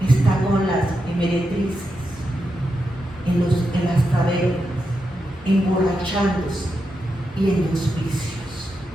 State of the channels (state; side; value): normal; both; correlation 0.86